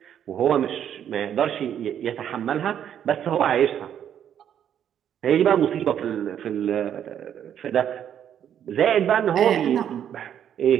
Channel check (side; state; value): left; quieter; 9.5 dB